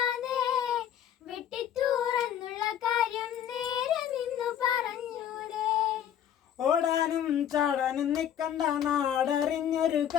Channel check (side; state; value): right; quieter; 9.8 dB